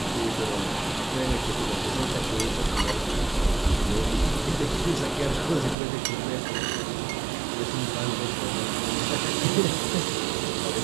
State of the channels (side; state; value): left; drops out; at 5.8 s